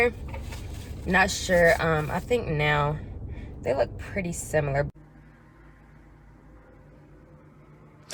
Not sure. I think now they look pretty similar.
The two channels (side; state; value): both; identical; correlation 1.00